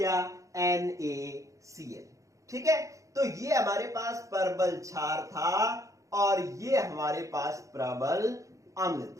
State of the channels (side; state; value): left; late; 0.15 ms